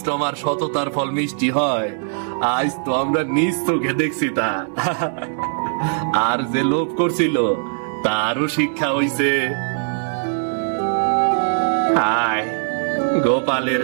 আর সততার ফল মিষ্টি হয়, আজ তো আমরা নিজ চোখে দেখছি তা। আর যে লোভ করছিল তারও শিক্ষা হইছে। হায়, গোপালের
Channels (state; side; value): silent; left; digital silence